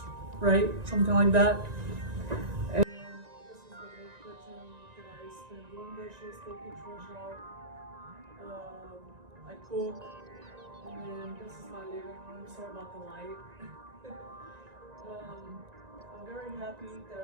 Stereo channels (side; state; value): left; late; 1.9 ms